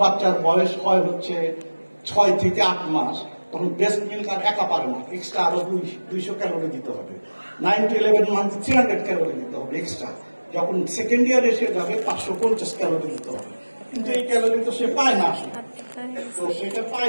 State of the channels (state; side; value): inverted; both; correlation -1.00